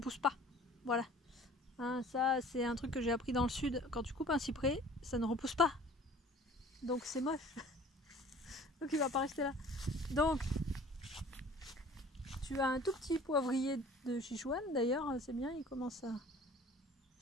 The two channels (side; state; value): both; normal; correlation 0.48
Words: pas. Voilà. Hein, ça, c'est un truc que j'ai appris dans le sud. Quand tu coupes un cyprès, ça ne repousse pas. Donc c'est moche. Donc il va pas rester là. Donc tu as un tout petit poivrier de Sichuan d'ailleurs, c'est bien, il commence à...